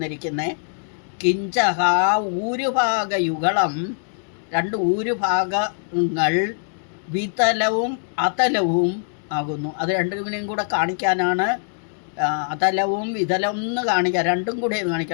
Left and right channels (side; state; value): right; silent; digital silence